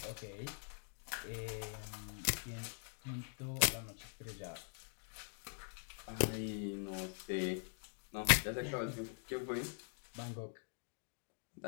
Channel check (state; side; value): silent; right; digital silence